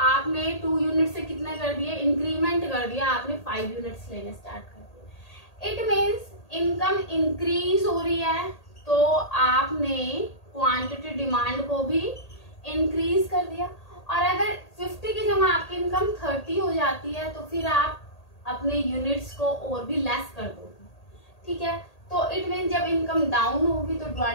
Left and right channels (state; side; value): late; right; 1.8 ms